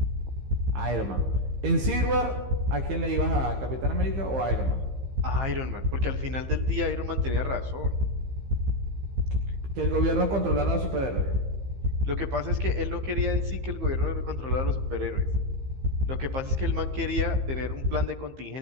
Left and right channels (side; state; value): left; late; 15 ms